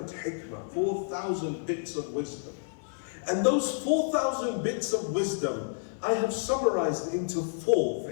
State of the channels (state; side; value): silent; right; 58 dB below the other